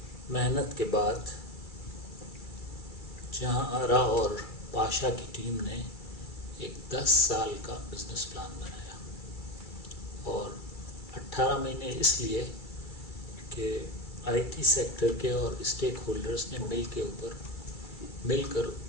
محنت کے بعد جہاں آرا اور پاشا کی ٹیم نے ایک 10 سال کا بزنس پلان بنایا، اور 18 مہینے اس لیے کہ آئی ٹی سیکٹر کے اور اسٹیک ہولڈرز نے مل کر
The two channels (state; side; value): late; right; 2.3 ms